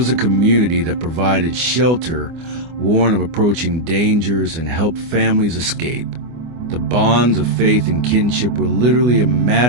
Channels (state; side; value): late; left; 24 ms